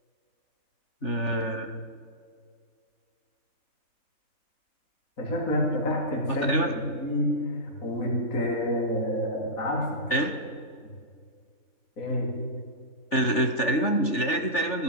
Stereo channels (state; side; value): late; right; 3.4 ms